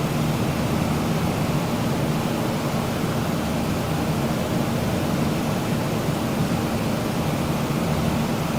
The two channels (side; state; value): both; identical; correlation 1.00